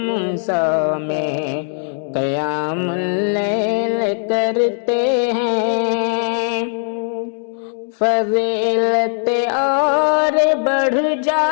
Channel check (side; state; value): right; silent; 67 dB below the other